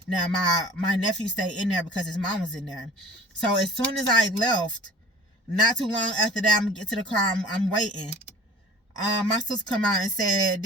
Now, my nephew stayed in there because his mom was in there. So as soon as I left, not too long after that, I'm going to get to the car. I'm waiting. My sister come out and said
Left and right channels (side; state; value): both; normal; correlation 0.45